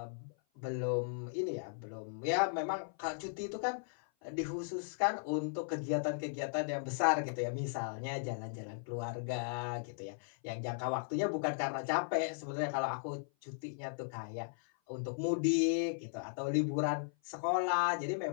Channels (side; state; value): right; silent; 53 dB below the other